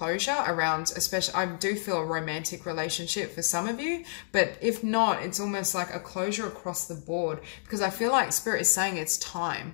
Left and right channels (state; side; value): silent; right; digital silence